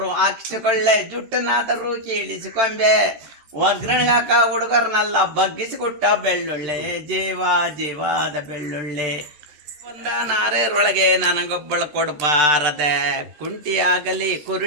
ಹಾಕಿಸಿಕೊಳ್ಳೆ, ಜುಟ್ಟನಾದರೂ ಕೀಳಿಸಿಕೊಂಬೆ, ಒಗ್ಗರಣೆಗಾಕ ಹುಡುಗರನ್ನೆಲ್ಲ ಬಗ್ಗಿಸಿಕೊಟ್ಟ ಬೆಳ್ಳುಳ್ಳಿ, ಜೀವ ಜೀವಾದ ಬೆಳ್ಳುಳ್ಳಿ. ಬಂದ ನಾರೇರೊಳಗೆ ನನಗೊಬ್ಬಳು ಕೊಡಬಾರದೆ, ಕುಂಟಿಯಾಗಲಿ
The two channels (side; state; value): left; late; 13 ms